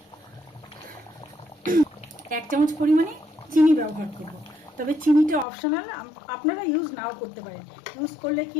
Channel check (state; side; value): drops out; right; at 5.5 s